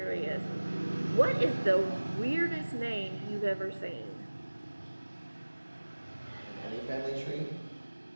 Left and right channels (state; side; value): inverted; both; correlation -1.00